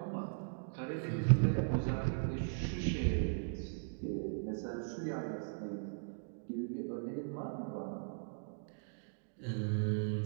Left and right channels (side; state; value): left; silent; digital silence